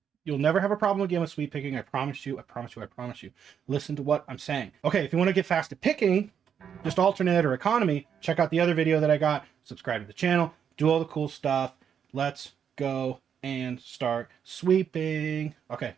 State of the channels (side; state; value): left; quieter; 8.0 dB